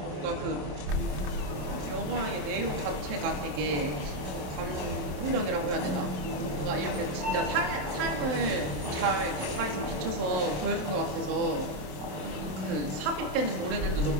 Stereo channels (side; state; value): left; late; 27 ms